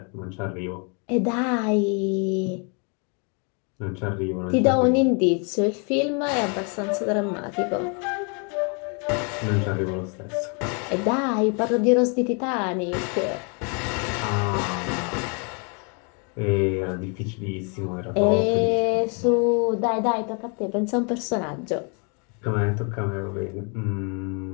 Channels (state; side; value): quieter; right; 36.6 dB